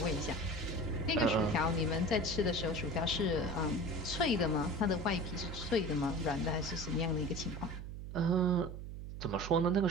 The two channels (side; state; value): right; noise; hum, 9 dB below the sound